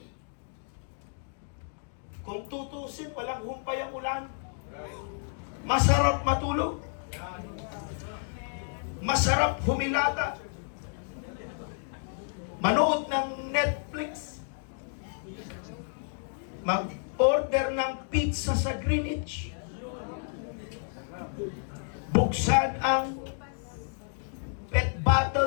Kung tutusin, walang humpay ang ulan. Masarap matulog. Masarap humilata. Manood ng Netflix. Mag-order ng pizza sa Greenwich. Buksan ang pet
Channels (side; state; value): right; silent; digital silence